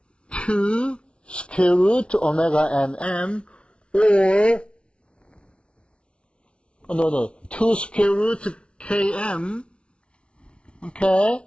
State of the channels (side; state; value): right; late; 0.058 ms